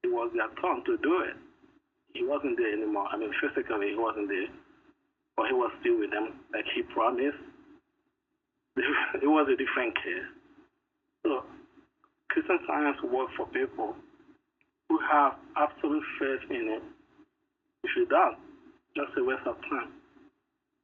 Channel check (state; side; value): identical; both; correlation 1.00